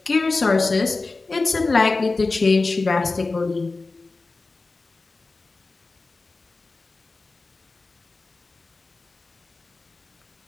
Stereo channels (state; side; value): quieter; right; 3.6 dB